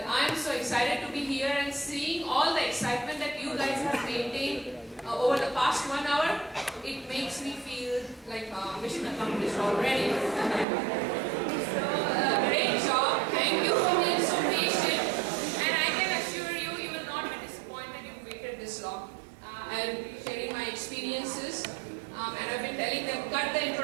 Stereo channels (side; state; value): left; drops out; at 10.7 s